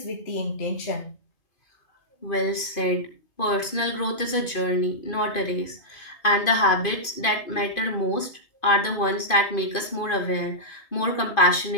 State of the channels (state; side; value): late; right; 2.5 ms